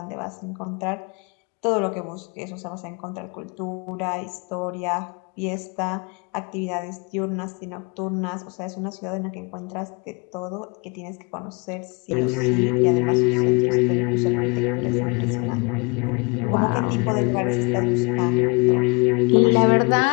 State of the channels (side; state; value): right; quieter; 30.8 dB